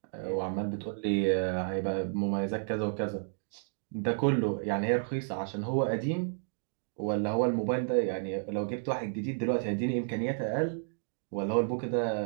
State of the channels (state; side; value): silent; left; digital silence